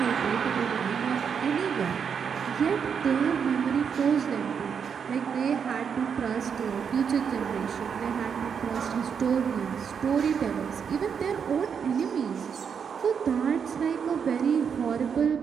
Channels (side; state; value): left; quieter; 6.9 dB